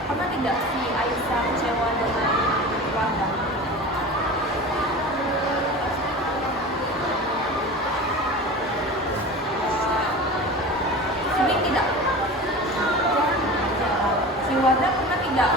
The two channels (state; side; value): normal; both; correlation 0.33